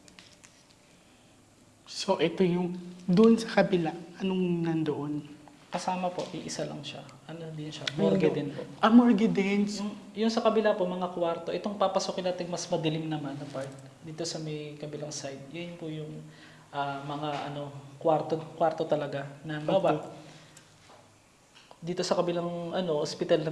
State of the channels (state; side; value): identical; both; correlation 1.00